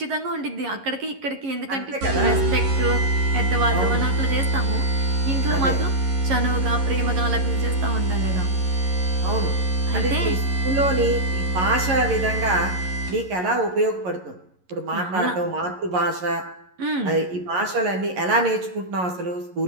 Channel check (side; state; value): left; late; 11 ms